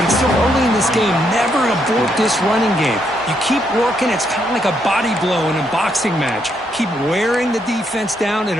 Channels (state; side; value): normal; both; correlation 0.76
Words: it's still early in this game. Never abort this running game. You keep working. It's kind of like a body blow in a boxing match. Keep wearing the defense down, and